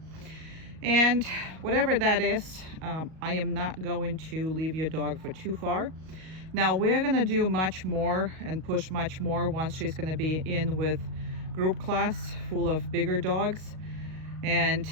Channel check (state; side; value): late; left; 38 ms